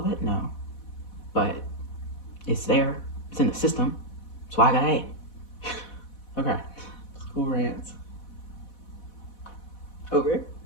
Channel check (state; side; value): late; right; 4.1 ms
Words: it? No. But it's there. It's in the system. That's why I got A. Okay. School rants. Over.